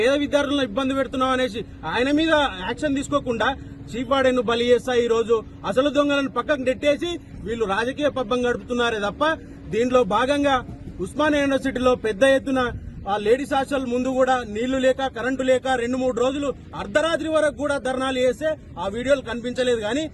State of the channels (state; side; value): identical; both; correlation 1.00